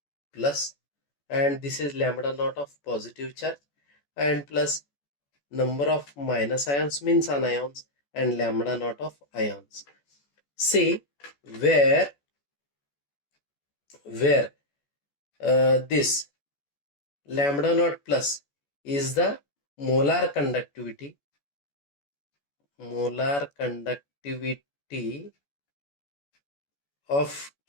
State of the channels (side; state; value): right; late; 14 ms